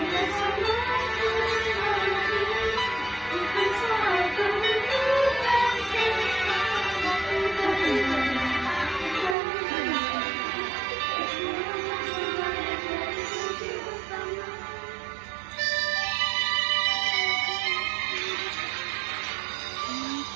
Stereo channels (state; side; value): drops out; left; at 9.3 s